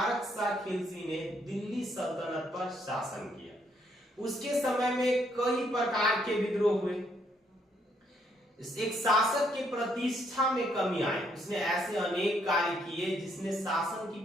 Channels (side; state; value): both; normal; correlation 0.71